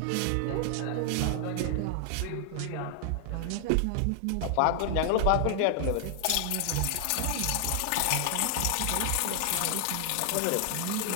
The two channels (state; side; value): different; both; correlation 0.00